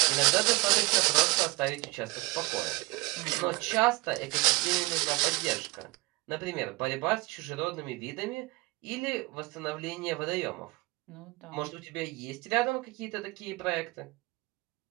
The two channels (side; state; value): left; quieter; 23.8 dB